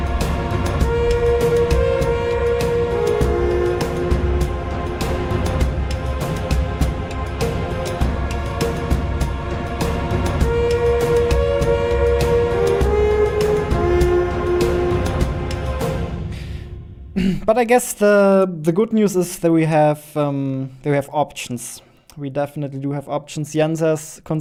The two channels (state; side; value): identical; both; correlation 1.00